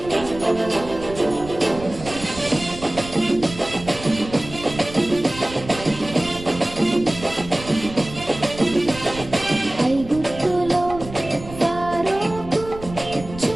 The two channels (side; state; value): right; noise; rumble, 14 dB below the sound